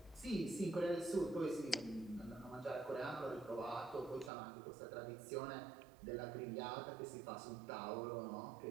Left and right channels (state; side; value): drops out; left; at 4.3 s